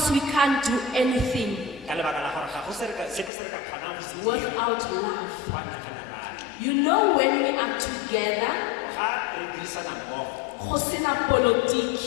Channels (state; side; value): drops out; right; at 3.3 s